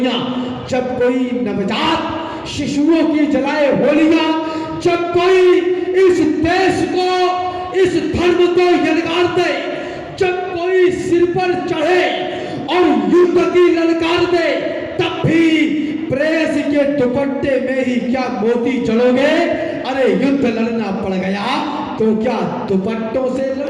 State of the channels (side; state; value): both; identical; correlation 1.00